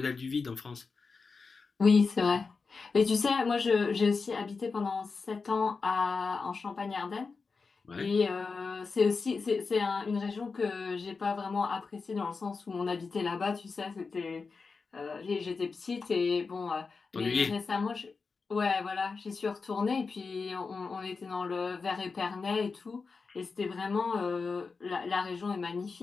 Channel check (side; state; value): right; quieter; 4.6 dB